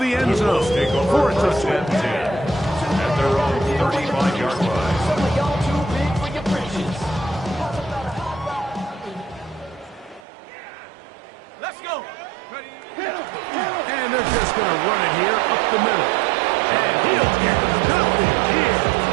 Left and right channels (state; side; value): drops out; left; at 10.2 s